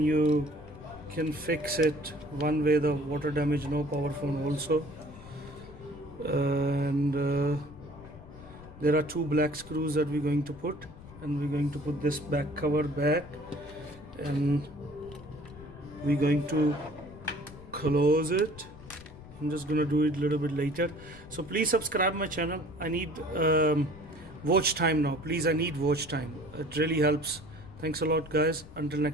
you can fix it one way, the water damage no power phone also. And there are two black screws that we're going to put, and we're going to put this back cover back, and we're going to close it. I'm just going to do it a little bit later. So please subscribe my channel. I need watch time now. Please, I need watch time. It really helps. Thanks a lot, guys. Until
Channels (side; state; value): left; noise; rumble, 18 dB below the sound